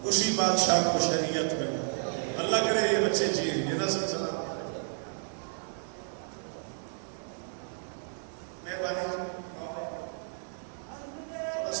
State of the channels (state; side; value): silent; left; 57 dB below the other